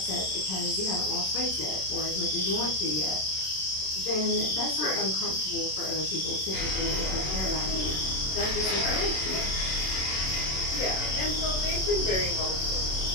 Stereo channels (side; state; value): right; late; 27 ms